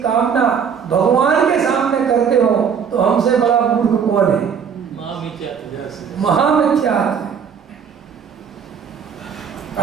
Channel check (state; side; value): quieter; left; 7.1 dB